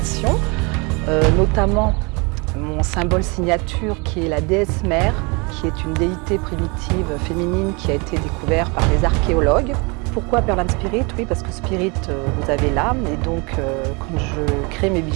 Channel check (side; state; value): left; quieter; 29.8 dB